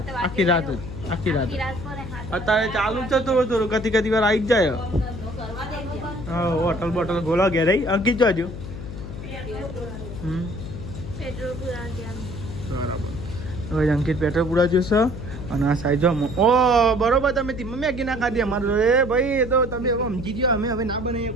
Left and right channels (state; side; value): noise; left; hum, 9 dB below the sound